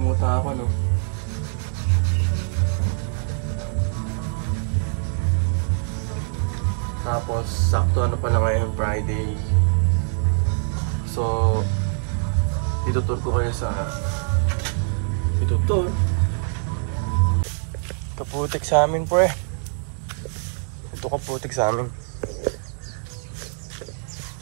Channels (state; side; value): silent; left; 58 dB below the other